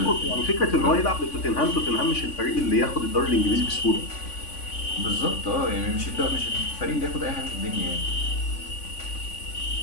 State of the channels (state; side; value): late; right; 3.5 ms